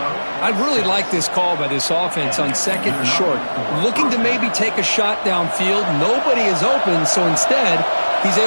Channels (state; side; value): inverted; both; correlation -1.00